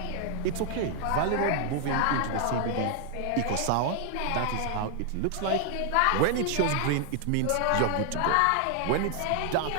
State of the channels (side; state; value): both; different; correlation 0.00